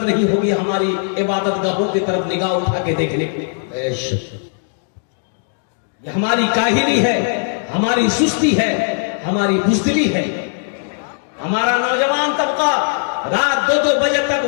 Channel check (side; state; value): right; silent; digital silence